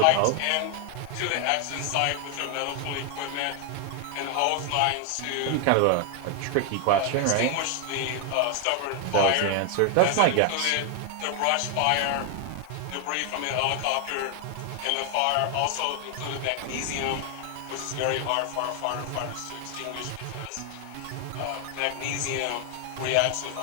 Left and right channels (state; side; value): different; both; correlation 0.00